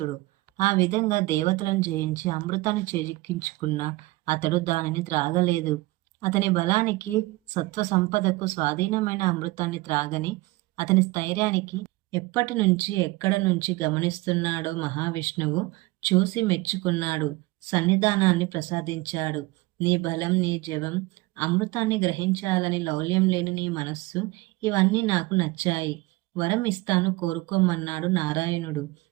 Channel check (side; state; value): left; quieter; 21.1 dB